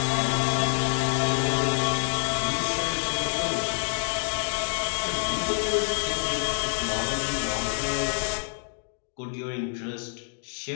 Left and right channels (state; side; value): silent; right; 60 dB below the other